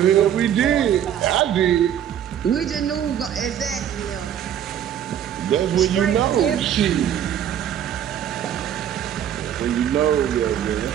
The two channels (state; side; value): quieter; left; 9.9 dB